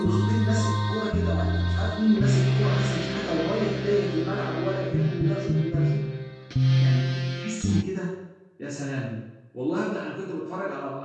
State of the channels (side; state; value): both; identical; correlation 1.00